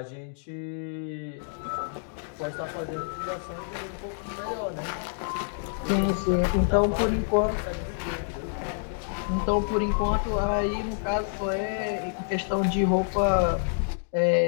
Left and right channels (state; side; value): silent; right; digital silence